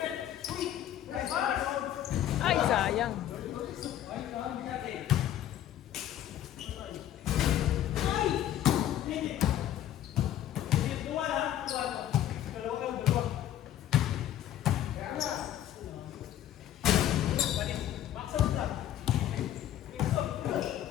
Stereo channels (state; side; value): quieter; right; 11.7 dB